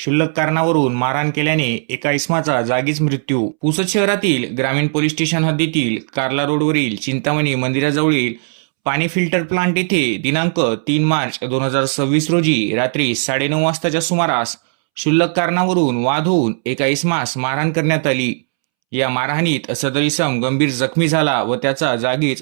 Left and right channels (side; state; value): left; silent; 68 dB below the other